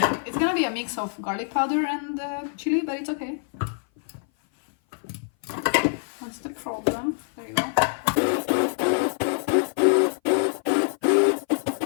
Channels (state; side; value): silent; right; 57 dB below the other